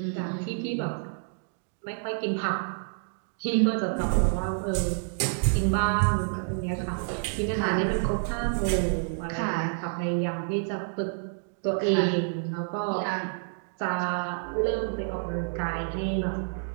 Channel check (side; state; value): left; silent; digital silence